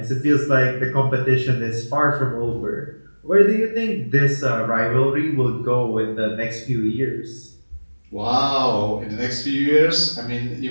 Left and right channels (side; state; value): both; inverted; correlation -1.00